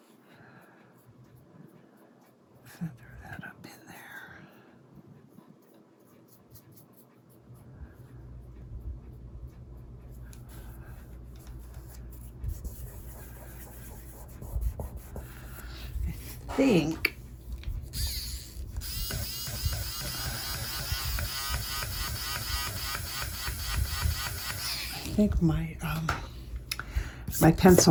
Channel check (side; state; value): both; identical; correlation 1.00